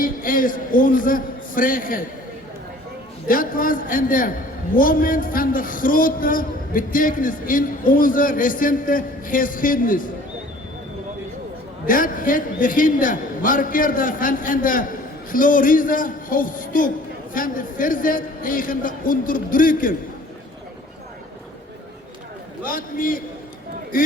is onze vrijheid. Dat was een moment van de grote betekenis in onze recente geschiedenis. Dat het begin markeerde van een glorieuze hoofdstuk van de verzet tegen de onderdrukking. Laat me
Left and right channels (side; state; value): both; normal; correlation 0.51